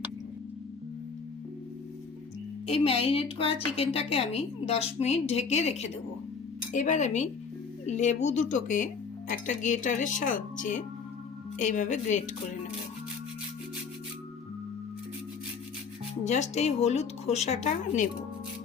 এই ম্যারিনেট করা চিকেনটাকে আমি 10 মিনিট ঢেকে রেখে দেব। এবার আমি লেবু দুটোকে একটা গ্রেটারের সাহায্যে এইভাবে গ্রেট করে নেব। জাস্ট এই হলুদ খোসাটা নেব,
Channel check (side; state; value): right; quieter; 5.5 dB